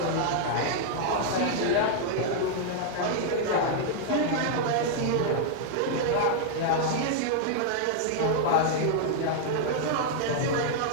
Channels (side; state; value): both; different; correlation -0.01